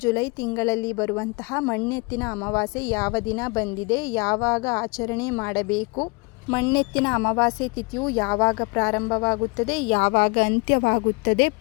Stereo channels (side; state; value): right; quieter; 28.8 dB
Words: ಜುಲೈ ತಿಂಗಳಲ್ಲಿ ಬರುವಂತಹ ಮಣ್ಣೆತ್ತಿನ ಅಮಾವಾಸ್ಯೆ ಯಾವ ದಿನ ಬಂದಿದೆ, ಯಾವಾಗ ಆಚರಣೆ ಮಾಡಬೇಕು, ಮಣ್ಣೆತ್ತಿನ ಅಮಾವಾಸ್ಯೆ ತಿಥಿಯು ಯಾವಾಗ ಪ್ರಾರಂಭವಾಗುತ್ತದೆ, ಯಾವಾಗ ಅಂತ್ಯವಾಗುತ್ತದೆ,